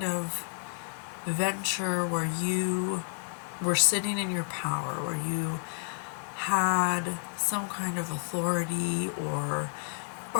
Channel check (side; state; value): right; silent; 57 dB below the other